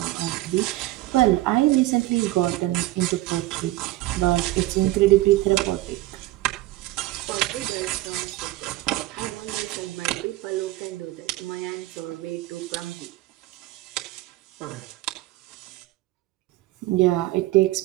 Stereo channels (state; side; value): quieter; left; 17.3 dB